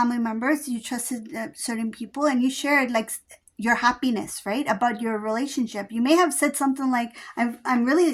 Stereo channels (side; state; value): both; identical; correlation 1.00